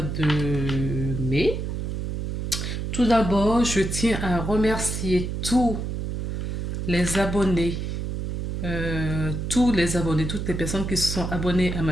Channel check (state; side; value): noise; right; hum, 3 dB below the sound